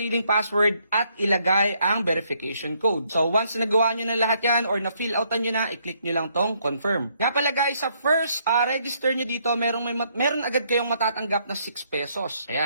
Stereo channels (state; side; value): inverted; both; correlation -0.71